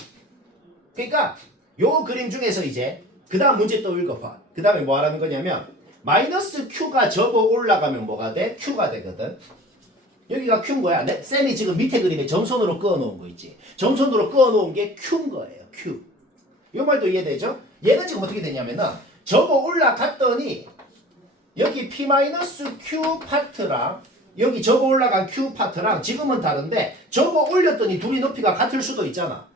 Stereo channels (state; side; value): normal; both; correlation 0.43